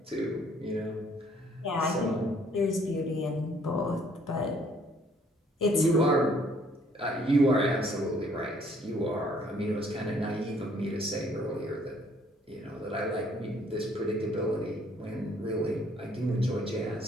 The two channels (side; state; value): both; normal; correlation 0.62